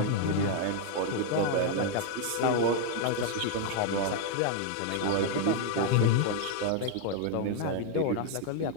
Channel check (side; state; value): both; different; correlation 0.00